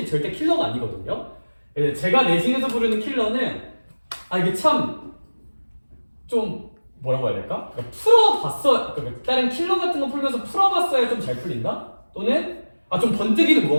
절대 킬러가 아니거든요. 제가 내신에서 부르는 킬러는 이게 참 좀 뭐라고 해야 될까? 그러니까 풀어봤어. 그러니까 다른 킬러 같은 거 풀면서 풀어봤어야 좀 잘 풀린다. 또는 좀 번뜩이는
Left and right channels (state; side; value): inverted; both; correlation -1.00